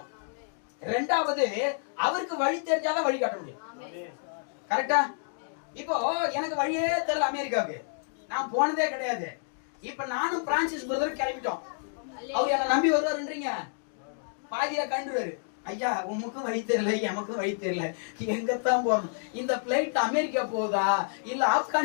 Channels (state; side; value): silent; right; digital silence